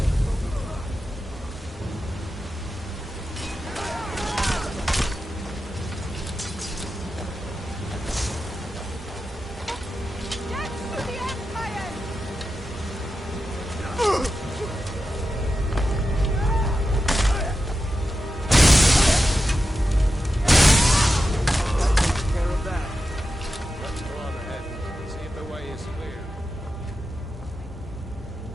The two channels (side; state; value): both; normal; correlation 0.90